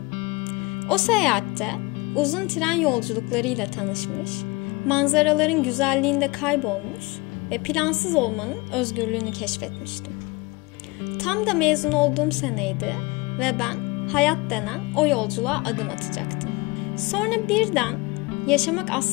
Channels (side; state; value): right; quieter; 24.7 dB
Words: O seyahatte uzun tren yolculuklarıyla tanışmış, manzaraların güzelliğinde kaybolmuş ve plansız olmanın özgürlüğünü keşfetmiştim. Tam da mezun olduğum seneydi ve ben hayat denen o yolculuğa adım atacaktım. Sonra birden yaşamak